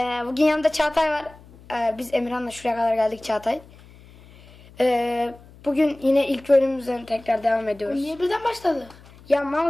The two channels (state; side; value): noise; left; hum, 23 dB below the sound